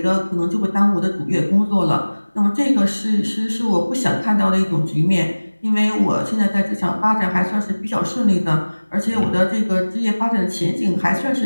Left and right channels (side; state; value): both; inverted; correlation -1.00